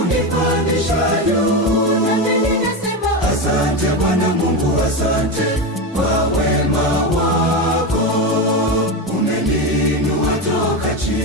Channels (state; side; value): normal; both; correlation 0.16